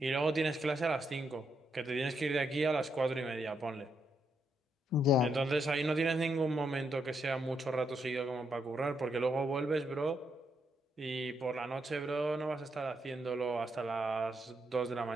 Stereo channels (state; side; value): normal; both; correlation 0.79